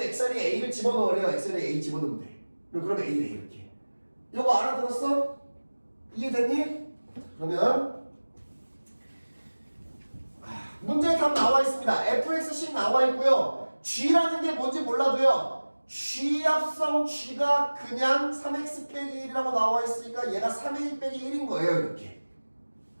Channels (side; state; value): both; inverted; correlation -1.00